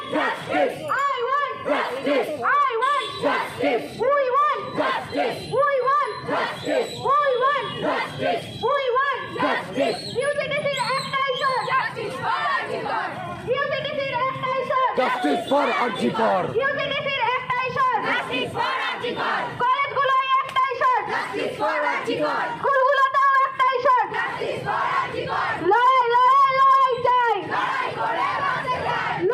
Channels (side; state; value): both; identical; correlation 1.00